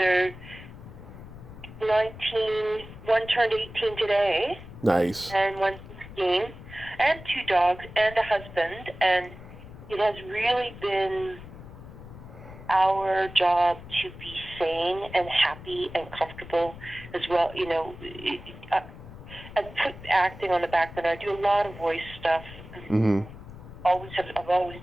19, one turned 18 today. Nice. And one's 16, and 2 dogs, and a husband, and it has really been our job to be sane and happy and comfortable as well. I put acting on the back burner. I do a lot of voice stuff. Mm-hmm. I've always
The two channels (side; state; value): left; noise; rumble, 15 dB below the sound